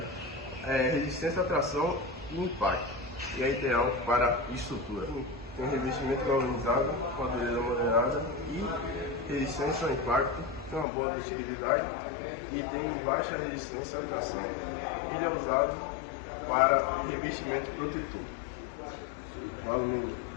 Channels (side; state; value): right; drops out; at 10.9 s